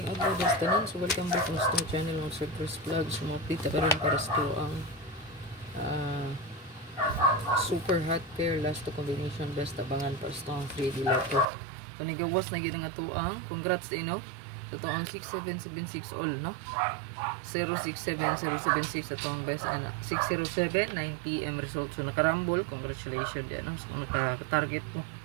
adlaw das tanan. So welcome back to my channel ng Surprise Vlog. So update ka rin para sa ang super hot pair last to combination best abangan para sa ang 3D Lotto. So nigawas na gyud nga tuang. Congrats din no. So to ang 6776 all no. 067076 ato ang best ana 607 9 PM result. So nakarambol, congratulations din no. So naka-target mo.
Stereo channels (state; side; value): drops out; left; at 11.5 s